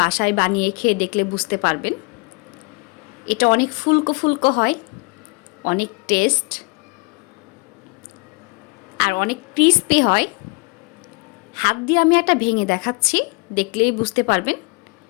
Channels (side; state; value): right; quieter; 30.4 dB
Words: বাসায় বানিয়ে খেয়ে দেখলে বুঝতে পারবেন। এটা অনেক ফুলকো ফুলকো হয়, অনেক টেস্ট আর অনেক ক্রিস্পি হয়। হাত দিয়ে আমি একটা ভেঙে দেখাচ্ছি, দেখলেই বুঝতে পারবেন